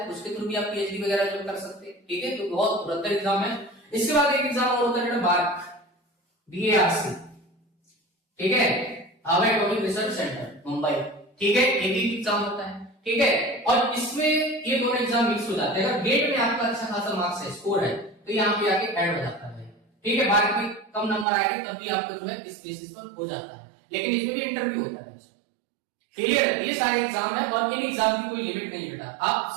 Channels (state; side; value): drops out; left; at 21.2 s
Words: उसके थ्रू भी आप पीएचडी वगैरह जो कर सकते हैं। ठीक है, तो बहुत बेहतर एग्जाम है। इसके बाद एक एग्जाम और होता है BARC, BARC, ठीक है, Harvard atomic research centre Mumbai. ठीक है, एक ही एग्जाम होता है। ठीक है, और इसमें ये दोनों एग्जाम मिक्स हो जाते हैं। अगर गेट में आपका अच्छा खासा मार्क्स है, स्कोर है, तो यहाँ पे आके ऐड हो जाता है। ठीक है, BARC में कम नंबर आएंगे तब भी आपको जो है इस बेसिस पर हो जाता है, लेकिन इसमें भी इंटरव्यू होता है। क्लियर है, ये सारे एग्जाम है, और इन एग्जाम की कोई लिमिट नहीं बेटा। आप